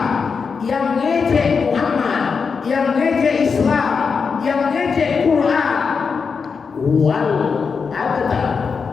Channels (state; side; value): quieter; right; 5.5 dB